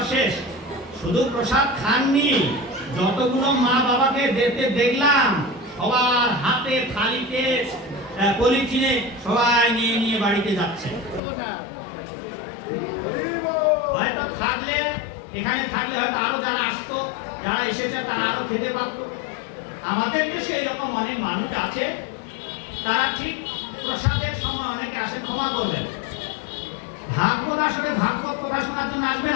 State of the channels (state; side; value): drops out; right; at 11.2 s